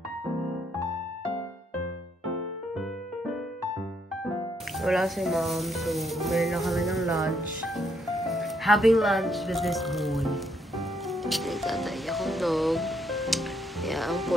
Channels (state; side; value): normal; both; correlation 0.73